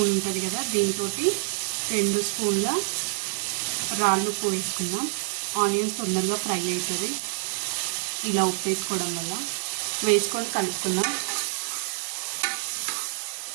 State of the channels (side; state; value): left; silent; digital silence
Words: ఉంటుంది కదా, దీంతో 2 స్పూన్ల రాళ్ళు ఉప్పు వేసుకుందాం. ఆనియన్స్ తొందరగా ఫ్రై అవుతుంది ఇలా ఉప్పు వేసుకోవడం వల్ల. వేసుకొని కలుపుకుందాం.